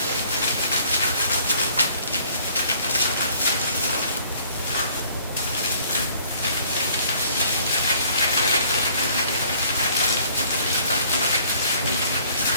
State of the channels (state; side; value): inverted; both; correlation -0.59